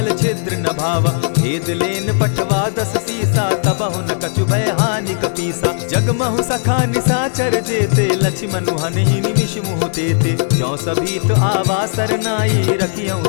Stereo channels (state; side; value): silent; right; digital silence